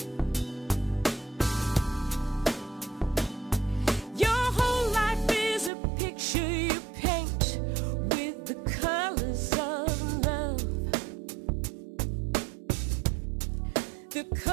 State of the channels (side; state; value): left; drops out; at 5.7 s